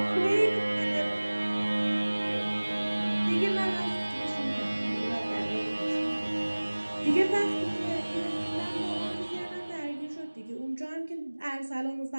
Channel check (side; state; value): both; inverted; correlation -1.00